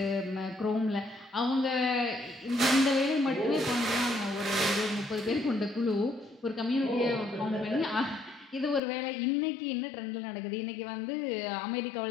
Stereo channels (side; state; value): right; drops out; at 8.8 s